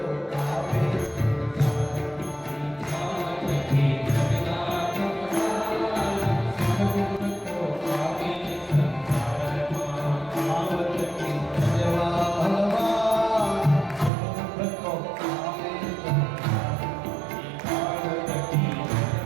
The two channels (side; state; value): left; drops out; at 14.1 s